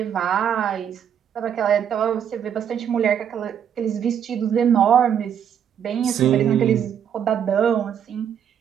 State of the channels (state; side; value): quieter; left; 8.6 dB